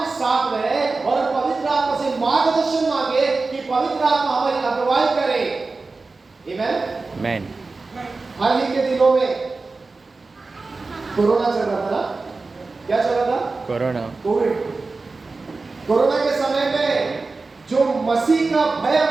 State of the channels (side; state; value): left; quieter; 3.8 dB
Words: साथ रहे और पवित्र आत्मा से मार्गदर्शन मांगे कि पवित्र आत्मा हमारी अगुवाई करे। आमीन। हाल ही के दिनों में कोरोना चल रहा था ना, क्या चल रहा था? कोविड। कोरोना के समय में जो मसीह का भय